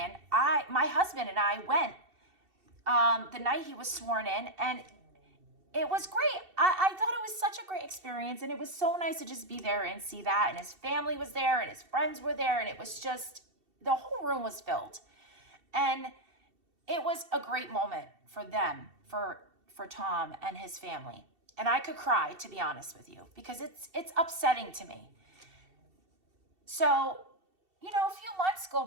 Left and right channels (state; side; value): late; left; 2.7 ms